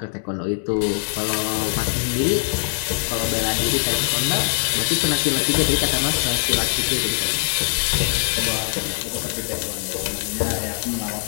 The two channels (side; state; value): right; silent; 64 dB below the other